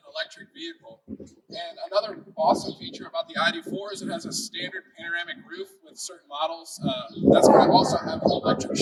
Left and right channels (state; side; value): identical; both; correlation 1.00